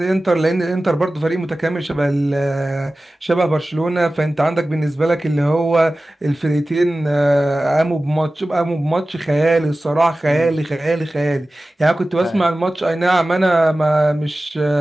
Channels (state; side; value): normal; both; correlation 0.96